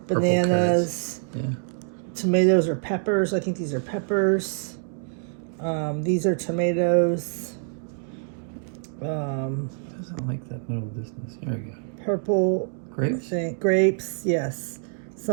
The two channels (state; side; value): silent; left; digital silence